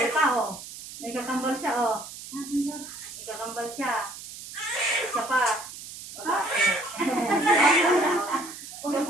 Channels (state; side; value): noise; right; hiss, 13 dB below the sound